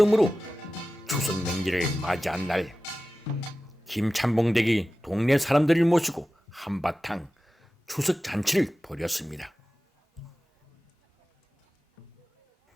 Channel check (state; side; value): normal; both; correlation 0.95